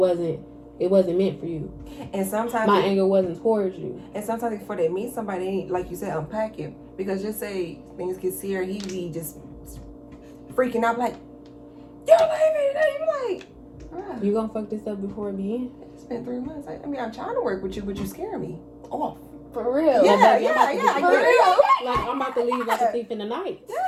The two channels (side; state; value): both; identical; correlation 1.00